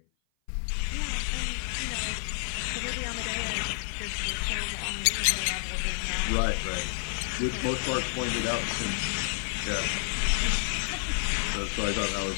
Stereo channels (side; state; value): right; silent; 56 dB below the other